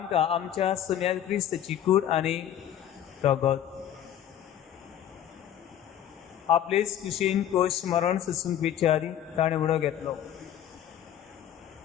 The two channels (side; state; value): right; quieter; 10.6 dB